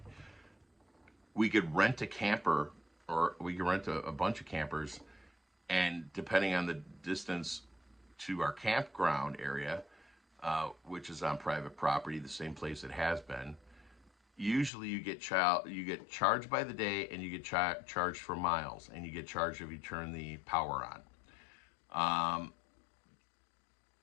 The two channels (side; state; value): right; drops out; at 14.7 s